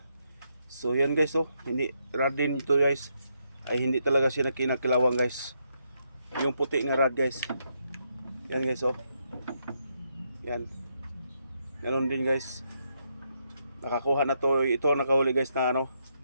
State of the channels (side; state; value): both; inverted; correlation -0.79